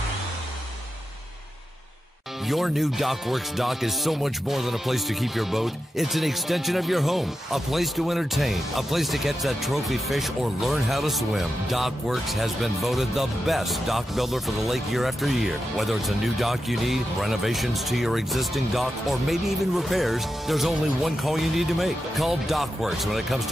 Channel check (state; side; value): normal; both; correlation 0.89